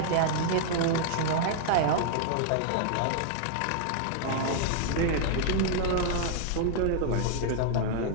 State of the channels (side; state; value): both; different; correlation 0.00